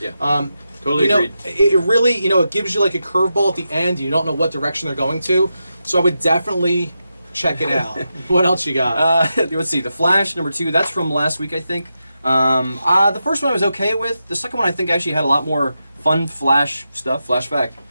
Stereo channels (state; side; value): inverted; both; correlation -0.88